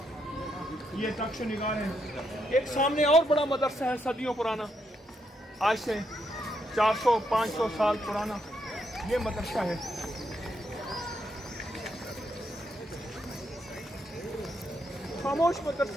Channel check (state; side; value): normal; both; correlation 0.78